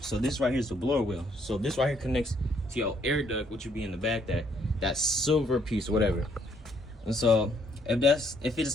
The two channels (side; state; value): both; normal; correlation 0.68